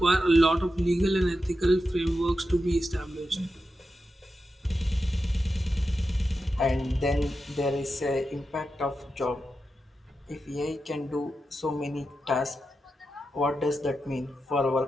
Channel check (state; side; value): normal; both; correlation 0.89